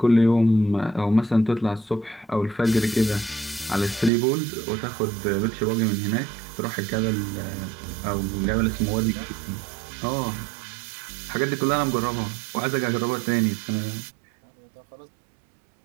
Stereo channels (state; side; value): drops out; left; at 4.1 s